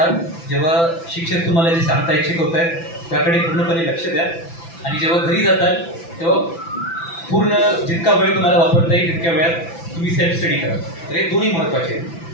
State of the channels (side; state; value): right; late; 6.0 ms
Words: जेव्हा शिक्षक तुम्हाला जे सांगतायत, शिकवतायत, त्याकडे पूर्णपणे लक्ष द्या. आणि जेव्हा घरी जाताल तेव्हा पूर्ण जितका वेळ तुम्हाला वापरता येईल तितक्या वेळात तुम्ही सेल्फ स्टडी करा. तर हे दोन्ही महत्त्वाचे आहेत.